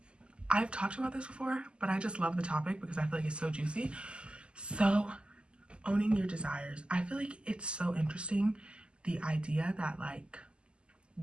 I've talked about this before, but I just love the topic because I feel like it's so juicy. So, owning your desires. I feel like it's so interesting, the idea that like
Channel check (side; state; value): left; late; 0.051 ms